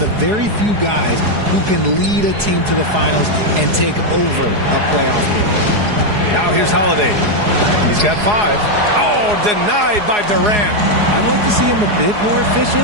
very few guys who can lead a team to the finals and take over a playoff game. Now here's Holiday. He's got 5. Oh, denied by Durant. I'd like to see him a bit more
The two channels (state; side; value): late; left; 4.8 ms